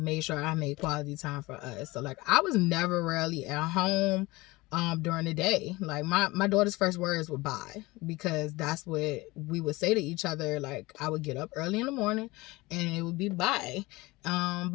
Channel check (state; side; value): quieter; right; 21.6 dB